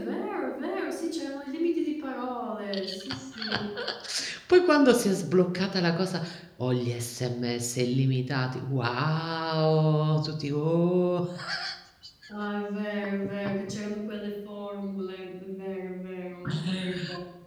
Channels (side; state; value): both; identical; correlation 1.00